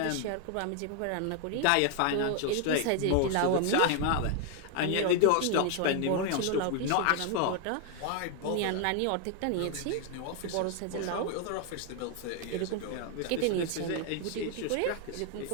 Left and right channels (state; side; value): different; both; correlation 0.00